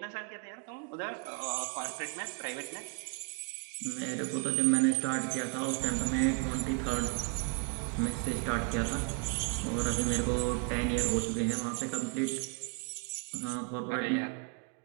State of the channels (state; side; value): quieter; left; 38.7 dB